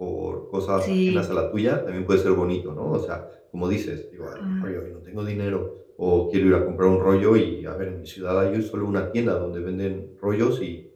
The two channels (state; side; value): identical; both; correlation 1.00